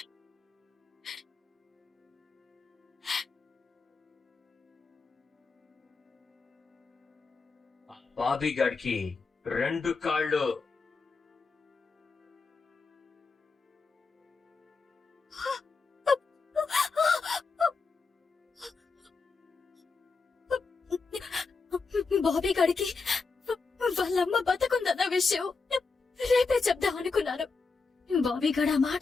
బాబీ గాడికి 2 కాళ్ళు. బాబీ గాడికి వాళ్ళమ్మ బతుకుందన్న విషయం రేపే చెప్దాం అనుకున్నాను. బాబీ గాడు ఆ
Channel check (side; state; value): right; quieter; 4.5 dB